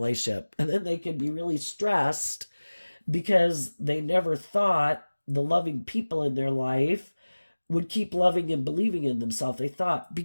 And then they can be really stressed because they never thought the loving people in their life would keep loving and believing in themselves. They thought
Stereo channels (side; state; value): both; inverted; correlation -1.00